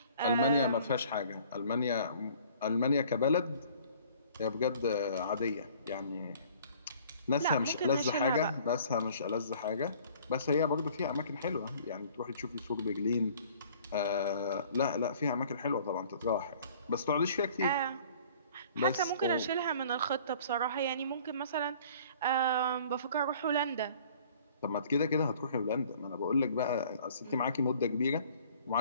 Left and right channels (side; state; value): both; inverted; correlation -0.53